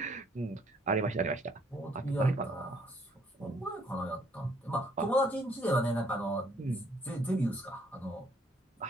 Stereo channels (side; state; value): both; normal; correlation 0.65